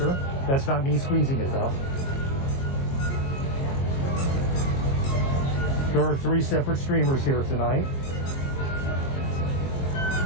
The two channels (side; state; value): right; late; 22 ms